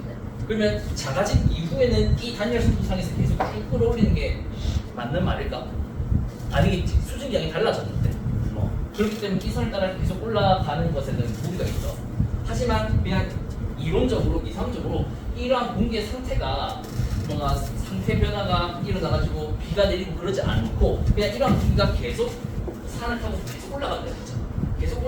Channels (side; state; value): both; identical; correlation 1.00